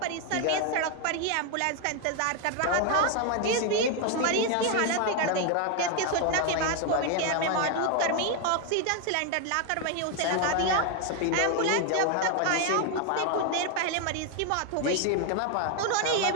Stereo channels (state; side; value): different; both; correlation 0.01